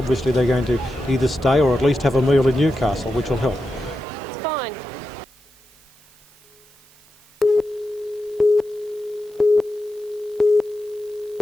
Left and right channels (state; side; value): noise; right; hiss, 28 dB below the sound